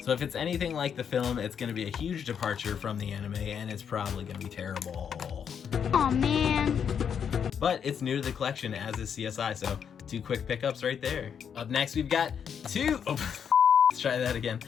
So if it's anything like the film, it's going to be a huge departure from the anime, and it's probably going to be terrible. Aw, man. But it's new to the collection, as is CSI, so 2 quick pickups right there. Up next, we've got 2... Oh, let's try that again.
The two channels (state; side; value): quieter; right; 7.6 dB